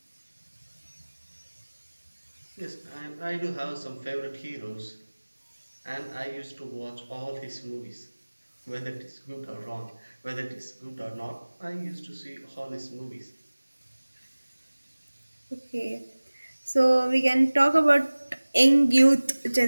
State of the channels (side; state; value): both; inverted; correlation -1.00